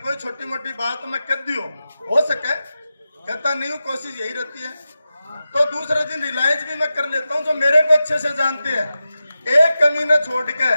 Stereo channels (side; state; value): both; inverted; correlation -0.92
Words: छोटी मोटी बात मैं कर दी हो सके, कहता नहीं हूँ, कोशिश यही रहती है। तो दूसरे दिन रिलायंस भी मैं कर लेता हूँ, जो मेरे को अच्छे से जानते हैं। एक कमी न छोड़ के